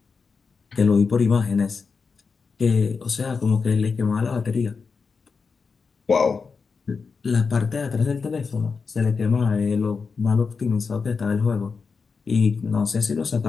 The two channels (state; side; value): quieter; right; 5.1 dB